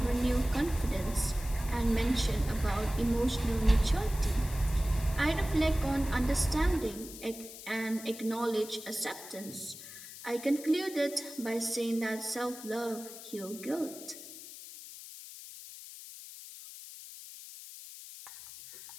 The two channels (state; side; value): noise; left; hiss, 14 dB below the sound